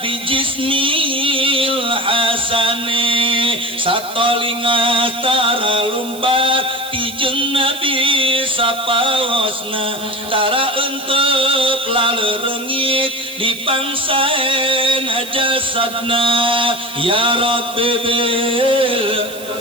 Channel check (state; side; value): noise; right; hiss, 15 dB below the sound